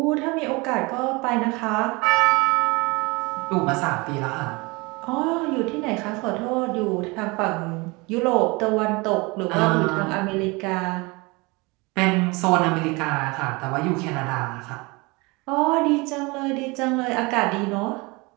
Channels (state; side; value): quieter; left; 25.7 dB